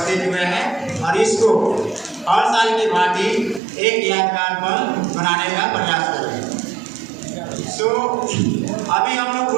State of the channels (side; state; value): left; drops out; at 3.6 s